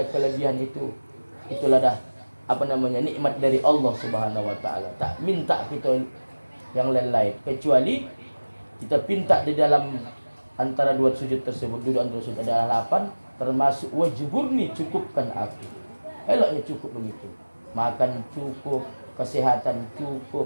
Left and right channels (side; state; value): both; inverted; correlation -1.00